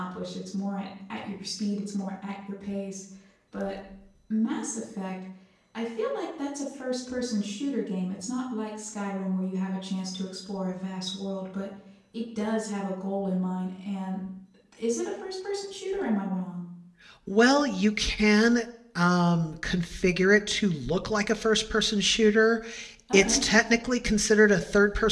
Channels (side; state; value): both; identical; correlation 1.00